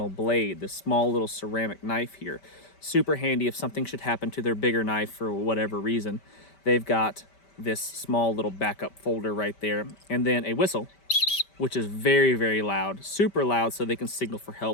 blade, this small little ceramic knife here. Super handy if something should happen to their bigger knife for whatever reason. They've got this small little backup folder right there. And then a whistle, which is very, very loud, super loud, so they can signal for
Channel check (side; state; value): right; late; 5.1 ms